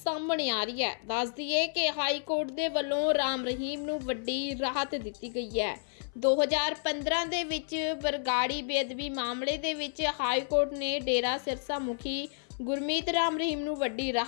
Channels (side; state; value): right; silent; 57 dB below the other